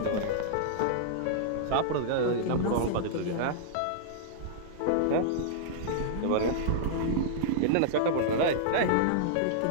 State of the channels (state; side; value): different; both; correlation -0.02